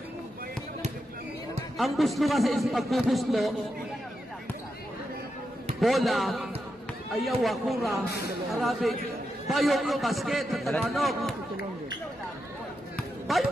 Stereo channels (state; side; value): normal; both; correlation 0.86